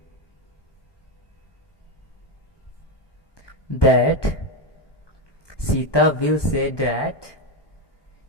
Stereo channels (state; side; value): late; right; 1.2 ms